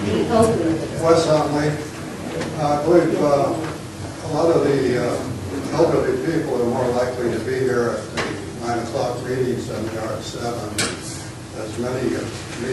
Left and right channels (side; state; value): both; identical; correlation 1.00